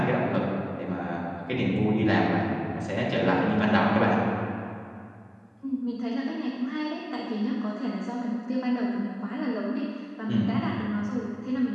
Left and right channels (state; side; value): identical; both; correlation 1.00